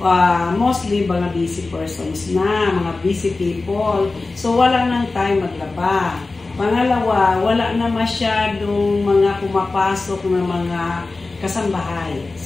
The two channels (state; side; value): quieter; right; 3.5 dB